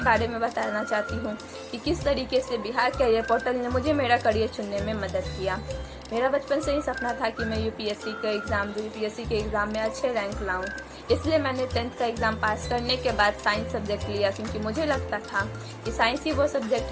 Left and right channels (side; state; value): both; identical; correlation 1.00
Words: बारे में बताना चाहती हूँ कि किस तरीके से बिहार कैरियर पोर्टल ने मुझे मेरा करियर चुनने में मदद किया। मेरा बचपन से ही सपना था कि मैं यूपीएससी के एग्ज़ाम में अच्छे रैंक लाऊं। इसलिए मैंने 10th का एग्ज़ाम पास करने के बाद साइंस सब्जेक्ट लिया, क्योंकि मुझे लगता था कि साइंस ही वो सब्जेक्ट